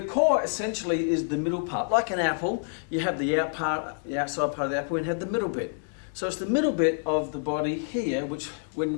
core essentially is the middle part. Like an apple, you have the outside part of the apple, and you have the middle bit. So it's the middle bit of the body here, which when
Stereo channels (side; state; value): right; silent; digital silence